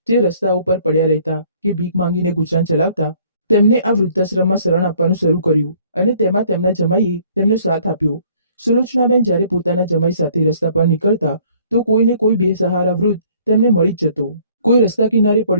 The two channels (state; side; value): inverted; both; correlation -0.59